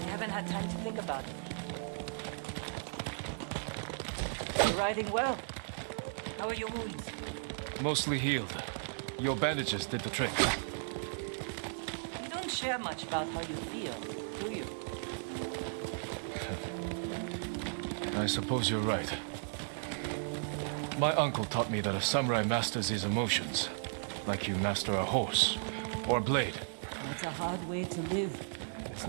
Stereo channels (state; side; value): silent; left; 54 dB below the other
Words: haven't had time to think about it. You're riding well. How are your wounds? Mostly healed. Your bandages did the trick. You don't share much about how you feel, do you? I suppose you're right. My uncle taught me that a samurai masters his emotions, like you master a horse or a blade. That's a hard way to live. It's